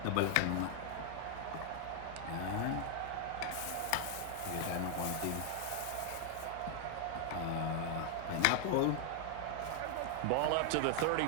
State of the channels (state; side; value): different; both; correlation 0.00